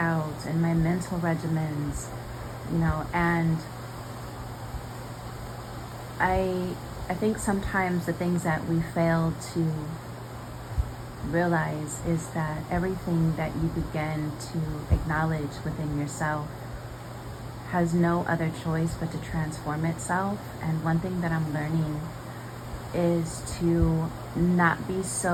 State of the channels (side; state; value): both; identical; correlation 1.00